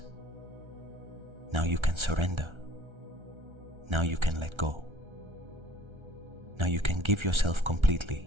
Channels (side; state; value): left; late; 1.3 ms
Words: now you can surrender. Now you can let go. Now you can give yourself